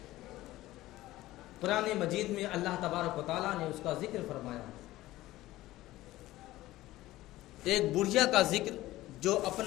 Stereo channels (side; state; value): right; quieter; 16.7 dB